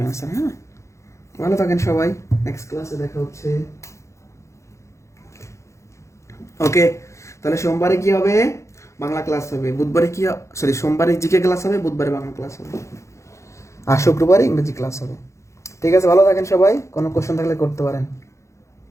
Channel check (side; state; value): right; late; 0.14 ms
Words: অ্যান্সার। হ্যাঁ, ভালো থাকেন সবাই, নেক্সট ক্লাসে দেখা হচ্ছে। ওকে, তাহলে সোমবারে কি হবে? বাংলা ক্লাস হবে। বুধবারে কি, সরি, সোমবারে জিকে ক্লাস হবে, বুধবারে বাংলা ক্লাস হবে, আর শুক্রবারে ইংরেজি ক্লাস হবে। ঠিক আছে, ভালো থাকেন সবাই, কোনো কোশ্চেন থাকলে করতে পারেন।